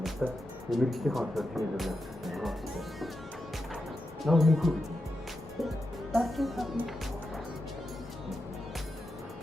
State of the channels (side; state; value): both; normal; correlation 0.88